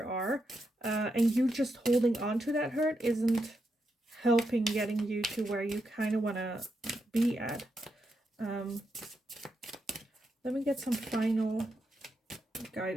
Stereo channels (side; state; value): both; normal; correlation 0.83